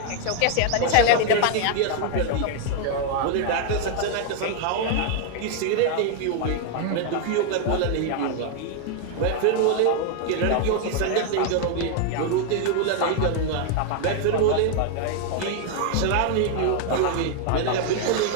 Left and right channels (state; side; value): different; both; correlation 0.00